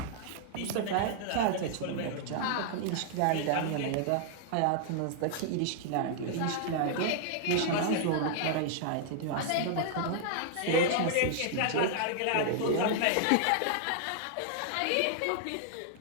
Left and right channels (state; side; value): different; both; correlation -0.01